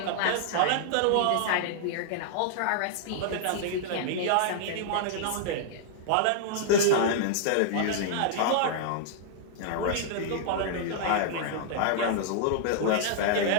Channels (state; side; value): different; both; correlation -0.01